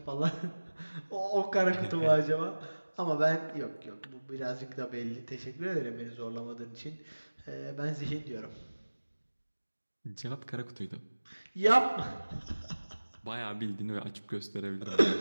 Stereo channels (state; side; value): inverted; both; correlation -1.00